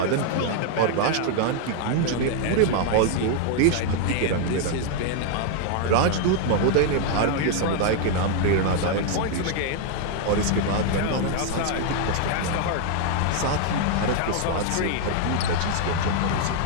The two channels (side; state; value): both; different; correlation 0.00